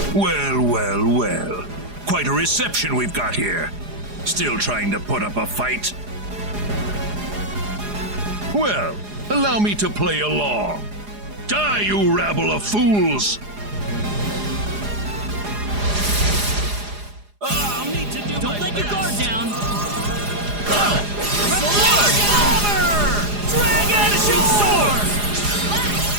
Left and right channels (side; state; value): left; late; 4.9 ms